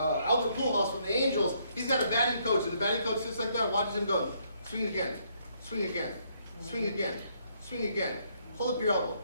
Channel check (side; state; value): both; inverted; correlation -0.70